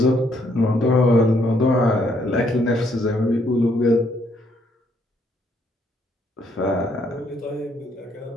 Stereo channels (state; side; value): normal; both; correlation 0.70